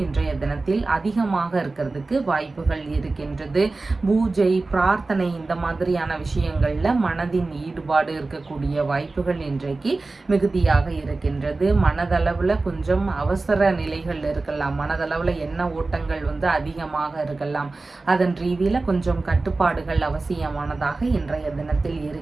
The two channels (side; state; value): left; quieter; 3.5 dB